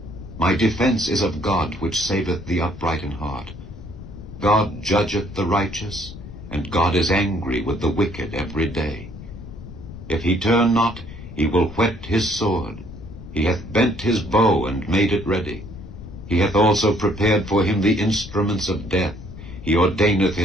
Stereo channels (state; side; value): noise; left; rumble, 14 dB below the sound